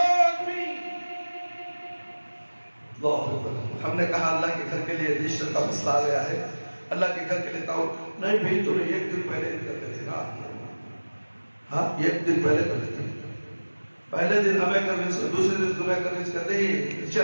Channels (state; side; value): inverted; both; correlation -1.00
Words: آدمی، ہم نے کہا اللہ کے گھر کے لیے رجسٹر کا مسئلہ آ گیا ہے، اللہ کے گھر کے لیے تاؤ نہیں بھئی تمہیں ایک دن پہلے کرتے تھے نا، ہاں ایک دن پہلے کرتے تھے، پہلے دن ہمیں کنوینس، دوسرے دن تمہیں کنوینس کرتے ہی